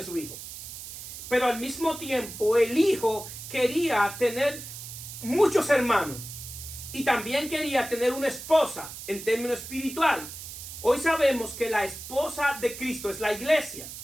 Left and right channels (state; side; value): noise; right; hiss, 11 dB below the sound